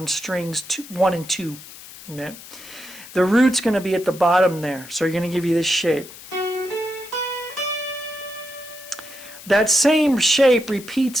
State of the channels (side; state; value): left; noise; hiss, 17 dB below the sound